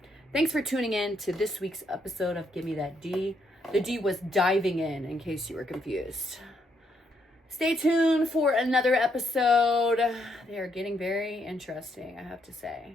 thanks for tuning in to this week's episode of Give Me That D. The D was diving in case you were confused. Stay tuned for another episode. They are getting very interesting, I have to say.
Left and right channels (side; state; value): both; normal; correlation 0.75